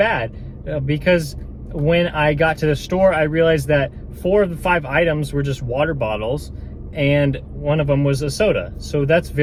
because when I got to the store, I realized that 4 of the 5 items were just water bottles, and one of them was a soda. So that's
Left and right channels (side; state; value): both; identical; correlation 1.00